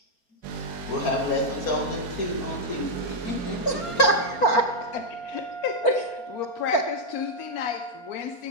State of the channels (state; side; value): late; right; 4.4 ms